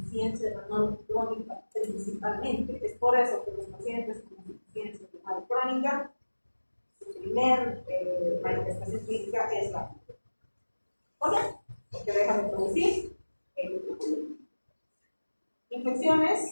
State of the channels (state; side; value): inverted; both; correlation -1.00